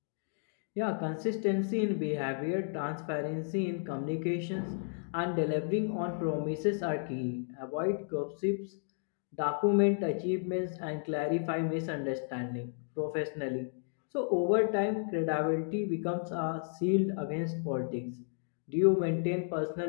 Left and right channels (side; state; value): right; silent; digital silence